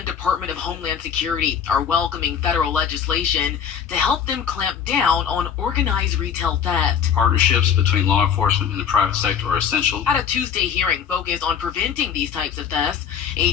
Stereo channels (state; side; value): quieter; right; 7.9 dB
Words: Department of Homeland Security are welcoming federal legislation to help them clamp down on organized retail theft. Partnerships between law enforcement and the private sector are essential. At a Tuesday hearing focused on preventing these types of thefts,